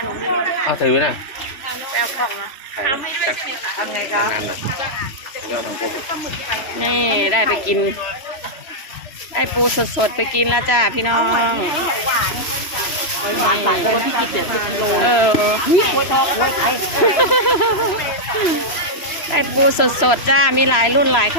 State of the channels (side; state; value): right; late; 3.0 ms